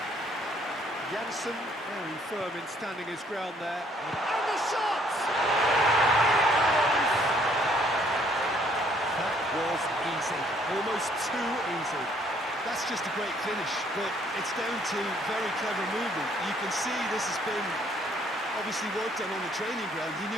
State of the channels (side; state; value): both; normal; correlation 0.64